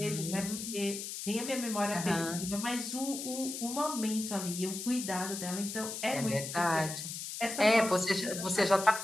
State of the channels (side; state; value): left; noise; hiss, 7 dB below the sound